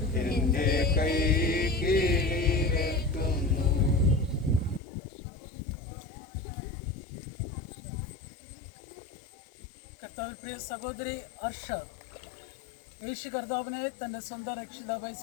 എന്റെ കൈ കീഴിലെത്തുന്നു. കർത്താവിൽ പ്രിയ സഹോദരി അർഷ യേശു കർത്താവിനെ തൻ്റെ സ്വന്തം രക്ഷിതാവായി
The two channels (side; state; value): right; drops out; at 4.8 s